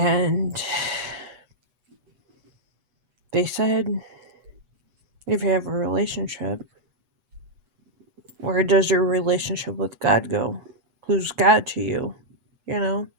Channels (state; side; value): late; left; 8.2 ms